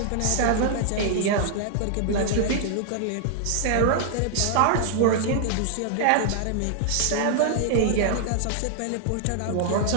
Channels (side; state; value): both; different; correlation -0.01